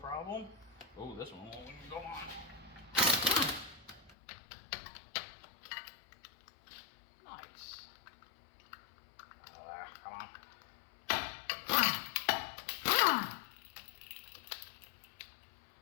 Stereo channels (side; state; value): right; drops out; at 4.2 s